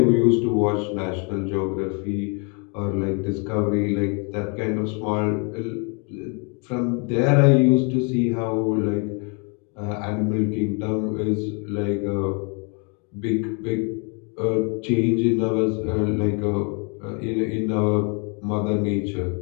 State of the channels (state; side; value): quieter; right; 34.9 dB